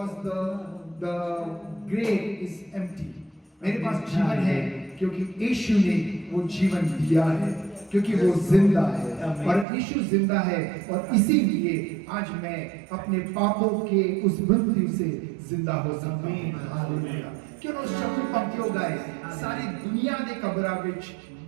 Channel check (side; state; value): left; drops out; at 9.7 s